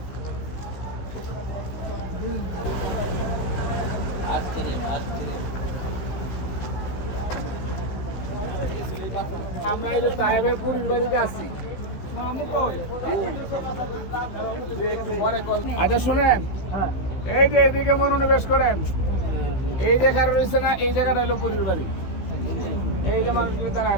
আমরা এই যে তায়েবের বুড়ির বাড়িতে আছি। আচ্ছা শুনেন, এই যে এইদিকে মনোনিবেশ করেন, এই জায়গাটা রয়েছে না, এই জায়গাটা হলো বুড়ির বাড়ি। এই যে মানুষগুলো তারা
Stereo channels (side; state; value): right; late; 16 ms